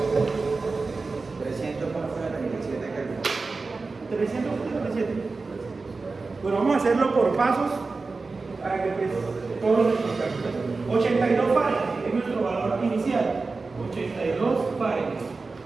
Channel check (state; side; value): quieter; left; 4.0 dB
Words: Bueno, vamos a hacerlo por pasos para que pues todos los campos. 82 Fahrenheit es nuestro valor inicial. 82 Fahrenheit.